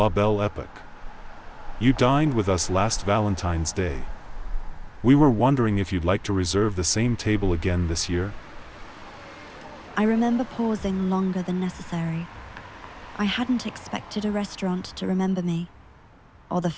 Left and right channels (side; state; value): both; identical; correlation 1.00